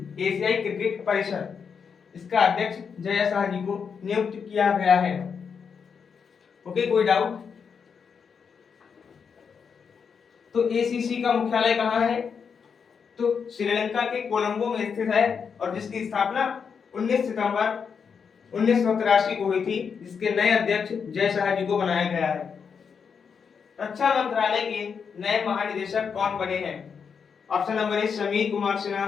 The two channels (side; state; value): right; quieter; 6.3 dB